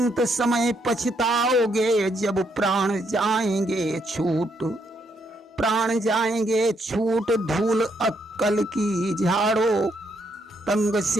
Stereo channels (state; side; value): normal; both; correlation 0.75